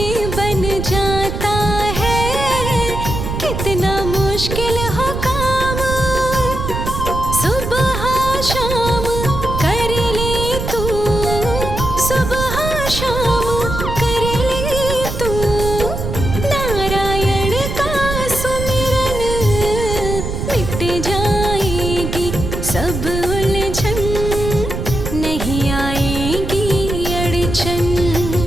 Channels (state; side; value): noise; right; rumble, 4 dB below the sound